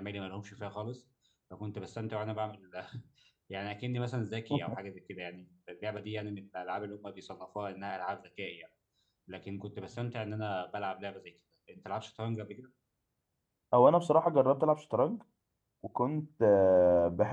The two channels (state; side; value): identical; both; correlation 1.00